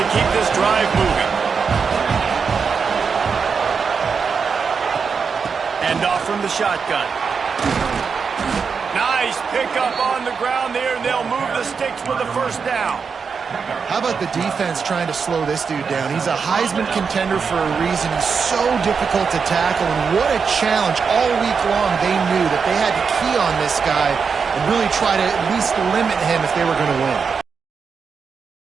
to keep this drive moving. And off from the shotgun. Nice pickup on the ground there, and they'll move the sticks with the first down. How about the defense trying to slow this dude down? He's a Heisman contender for a reason. He's so difficult to tackle, and what a challenge. All week long, they knew that they had to key on this guy and really try to at least limit him if they were going to win.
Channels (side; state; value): left; quieter; 5.7 dB